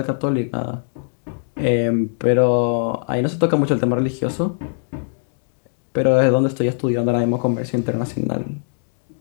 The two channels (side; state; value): right; silent; digital silence